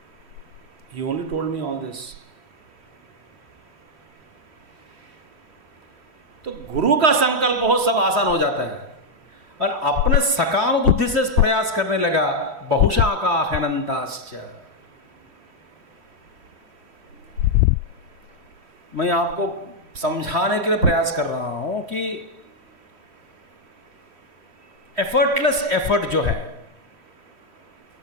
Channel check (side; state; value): left; late; 3.1 ms